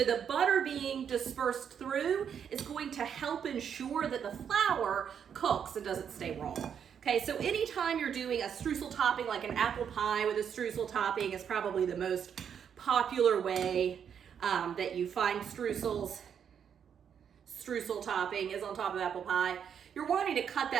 the butter being dispersed through is going to help ensure that the flour cooks and doesn't stay raw. Okay, so anytime you're doing a streusel topping, like an apple pie with a streusel topping is probably the most popular way that you find streusel topping is on top of apple pie. You're wanting to cut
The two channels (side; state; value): left; quieter; 7.9 dB